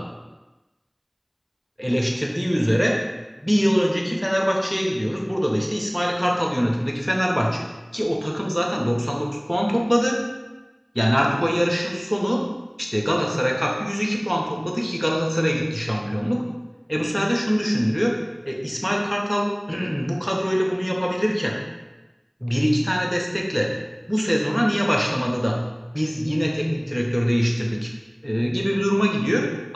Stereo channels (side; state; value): both; identical; correlation 1.00